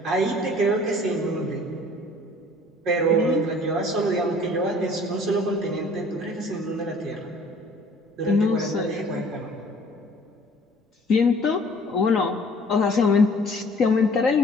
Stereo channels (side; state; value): both; normal; correlation 0.53